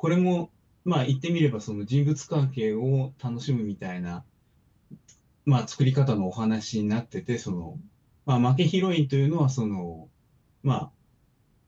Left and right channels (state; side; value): identical; both; correlation 1.00